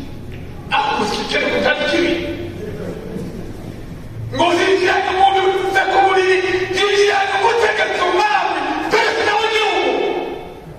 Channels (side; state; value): both; identical; correlation 1.00